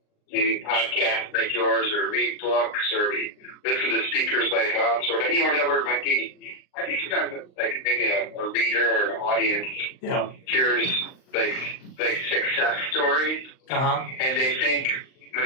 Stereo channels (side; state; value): right; late; 39 ms